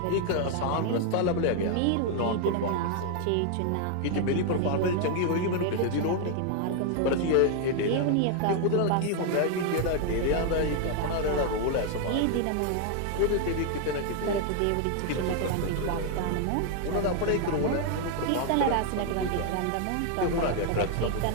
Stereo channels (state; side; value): different; both; correlation 0.00